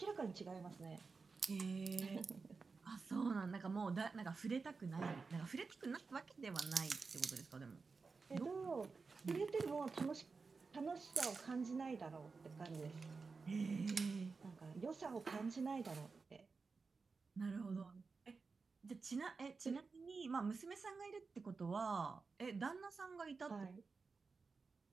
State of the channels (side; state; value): left; quieter; 4.5 dB